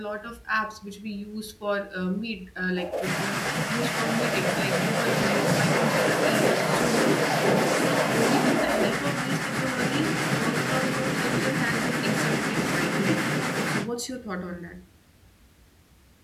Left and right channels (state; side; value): identical; both; correlation 1.00